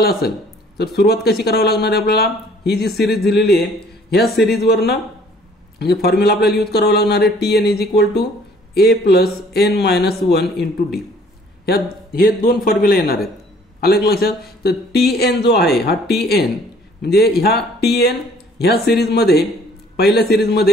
असेल तर सुरुवात कशी करावी लागणार आहे आपल्याला, ही जी सिरीज दिलेली आहे ह्या सिरीजवरनं म्हणजे फॉर्म्युला आपल्याला यूज करावा लागणार आहे tn is equal to a plus n minus 1 into D. हे दोन फॉर्म्युला येणार आहेत, आलं लक्षात. तर tn जो आहे हा tn म्हणजे ह्या tn ह्या सिरीजमध्ये पहिल्या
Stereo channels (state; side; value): normal; both; correlation 0.57